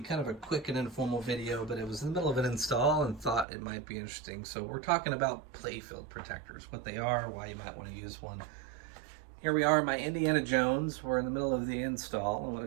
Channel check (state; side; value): drops out; left; at 3.5 s